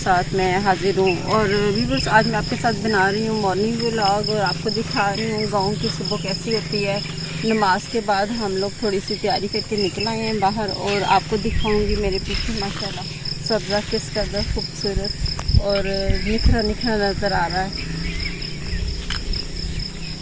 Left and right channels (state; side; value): identical; both; correlation 1.00